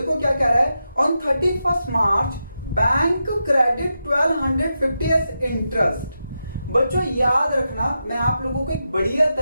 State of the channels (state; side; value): inverted; both; correlation -0.87